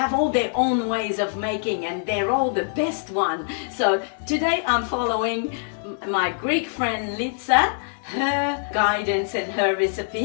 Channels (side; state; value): right; silent; 63 dB below the other